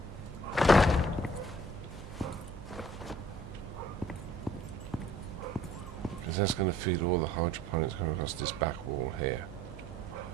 that's going to feed all the hydroponics coming across this back wall here.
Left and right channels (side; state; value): both; normal; correlation 0.56